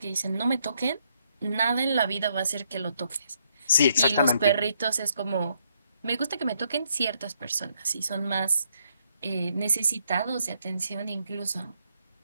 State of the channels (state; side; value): inverted; both; correlation -0.74